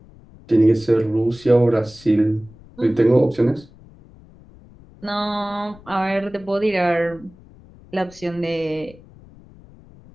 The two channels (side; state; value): left; noise; rumble, 23 dB below the sound